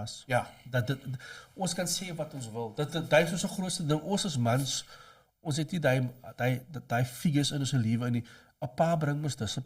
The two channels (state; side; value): identical; both; correlation 1.00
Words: Ja. Ons kan sê wat ons wil. Dit is ons grootste ding. Ons as mans, ons het nie daai figures in ons lewe nie. 'n Pa bring ons